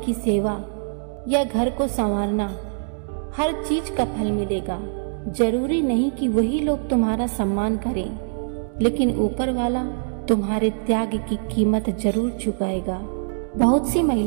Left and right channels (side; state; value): left; silent; digital silence